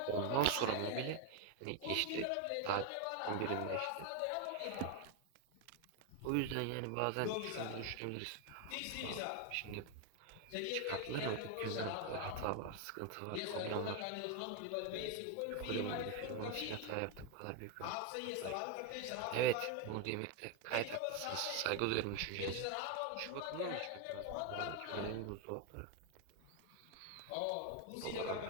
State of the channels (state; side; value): different; both; correlation 0.01